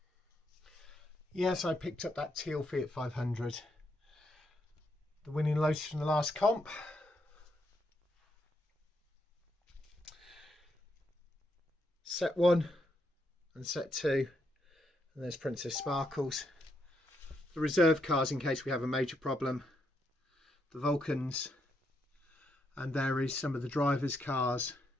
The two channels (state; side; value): normal; both; correlation 0.78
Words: Yes, I picked up that teal Fiat 500, the winning Lotus from the last comp. Set 1 and set 2, and there's Princess Sparkles. The reserve cars in case we have a major problem, the Vulcans, and there is some of the drivers' cars.